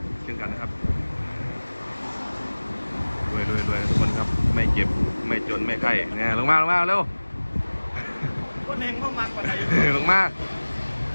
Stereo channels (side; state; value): both; inverted; correlation -1.00